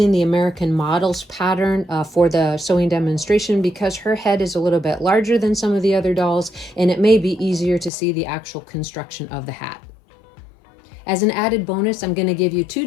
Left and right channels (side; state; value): right; drops out; at 7.9 s